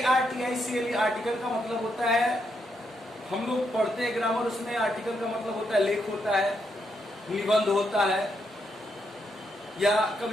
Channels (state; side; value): normal; both; correlation 0.79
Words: ARTICLE आर्टिकल का मतलब होता है, हम लोग पढ़ते हैं ग्रामर, उसमें आर्टिकल का मतलब होता है लेख होता है, निबंध होता है, या